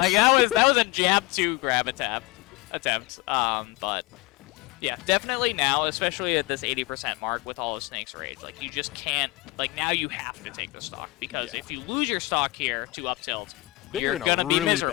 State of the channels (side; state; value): right; quieter; 21.8 dB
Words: that was a jab two grab attempt. But yeah, definitely now, especially at this 80% mark with all of Snake's rage, like you just can't. Like now you have to take the stock because Yeah. if you lose your stock here to up tilt, Then you're in a gonna be really miserable.